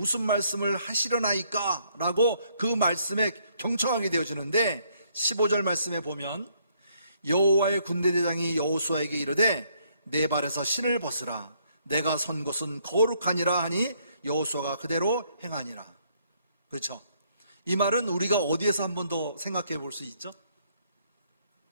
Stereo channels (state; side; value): inverted; both; correlation -0.69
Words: 말씀을 하시려나이까? 라고 그 말씀에 경청하게 되어지는데, 15절 말씀에 보면 여호와의 군대 대장이 여호수아에게 이르되 내 발에서 신을 벗으라. 내가 선 곳은 거룩하니라 하니 여호수아가 그대로 행하니라. 그렇죠? 이 말은 우리가 어디에서 한 번 더 생각해 볼 수 있죠?